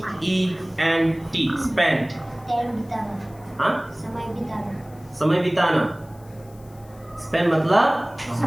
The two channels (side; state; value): left; noise; hiss, 27 dB below the sound